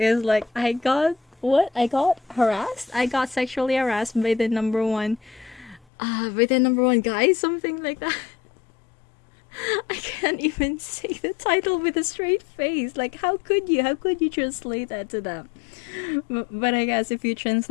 like, I got sexually harassed by the number one guy, something like that. I can't even say the title with a straight face. Like, how could you translate that to them? But I guess if you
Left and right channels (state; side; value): drops out; right; at 5.9 s